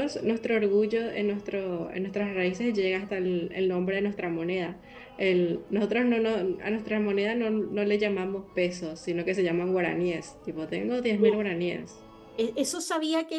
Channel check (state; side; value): identical; both; correlation 1.00